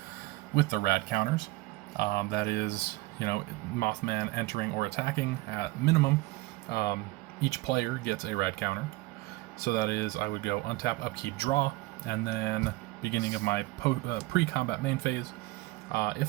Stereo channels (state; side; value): quieter; left; 20.3 dB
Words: with the rad counters, that is, Mothman entering or attacking at minimum, each player gets a rad counter. So that is, I would go untap, upkeep, draw, and then beginning of my pre-combat main phase,